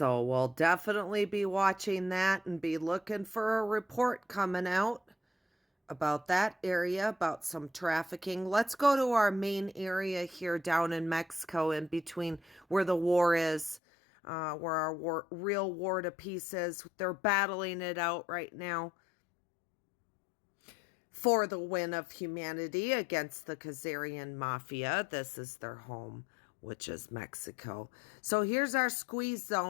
we'll definitely be watching that and be looking for a report coming out about that area, about some trafficking. Let's go to our main area here down in Mexico, in between where the war is, where our real war to peace is. They're battling it out right now for the win of humanity against the Khazarian mafia. This is their home, which is Mexico. So here's our squeeze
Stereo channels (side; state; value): right; drops out; at 13.8 s